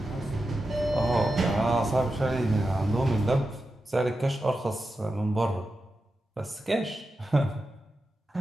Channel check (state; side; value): normal; both; correlation 0.90